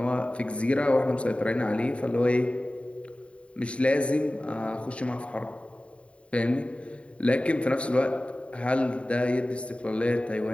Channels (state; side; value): late; right; 0.062 ms